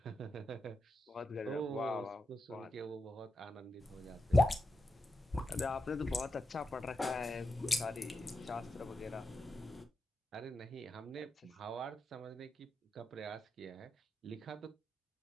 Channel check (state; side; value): normal; both; correlation 0.88